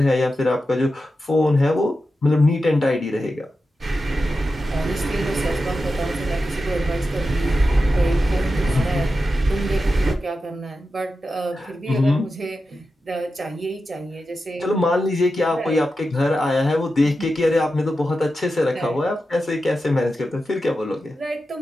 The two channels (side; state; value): both; normal; correlation 0.91